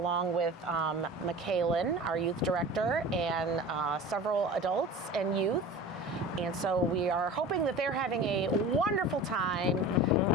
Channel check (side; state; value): both; normal; correlation 0.37